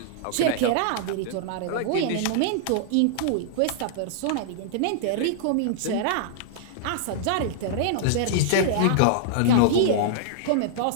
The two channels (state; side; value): different; both; correlation -0.01